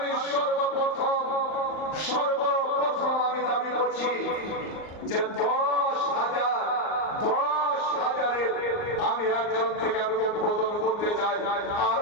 সর্বপ্রথম আমি দাবি করছি যে 10,000-10,000-এর আমি একজন থেকে আমি উদ্বোধন করতে চাই,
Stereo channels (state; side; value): late; right; 38 ms